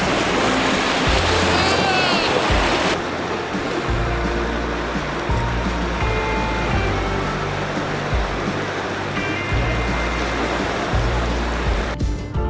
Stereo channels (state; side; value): identical; both; correlation 1.00